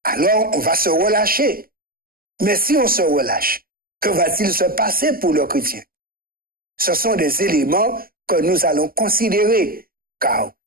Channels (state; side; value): late; left; 0.42 ms